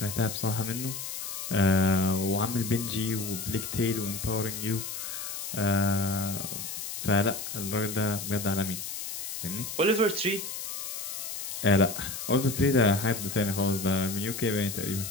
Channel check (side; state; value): left; noise; hiss, 6 dB below the sound